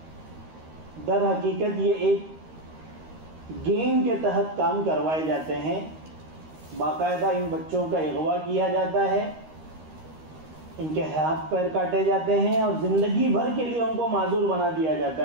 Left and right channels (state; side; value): late; left; 13 ms